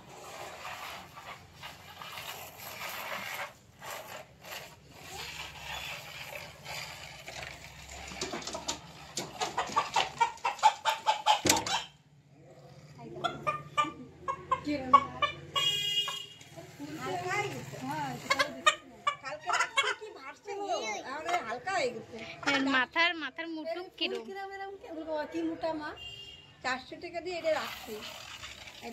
মাথার মুটুক কিরম কি মোটা মা, 400 টাকা দিয়ে এটা রাখছি।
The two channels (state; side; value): identical; both; correlation 1.00